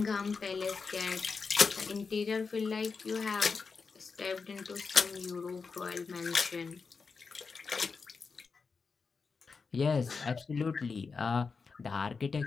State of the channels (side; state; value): right; quieter; 4.9 dB